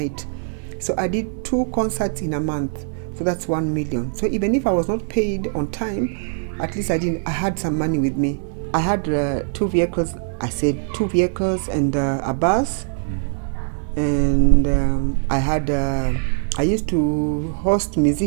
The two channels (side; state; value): left; silent; 60 dB below the other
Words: So I did 2 concerts in a month. So that's 1 million. So even if I was not paid on time, at least I had some money with me. I had 2 vehicles. I said 2 vehicles and a bus. And I used to host